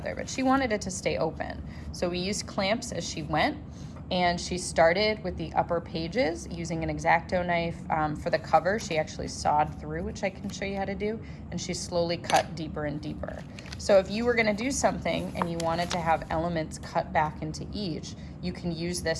But she wanted it to stay open, so we used clamps as she went, and she started with the upper pages using an X-Acto knife. For the cover, she actually sawed through, which I can show you how to do, and she slowly cut deeper and deeper. So if you were going to do something and you wanted to have elements cut back into each, you can use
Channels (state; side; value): identical; both; correlation 1.00